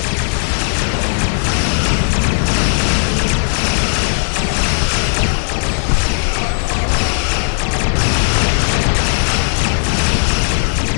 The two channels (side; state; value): right; silent; digital silence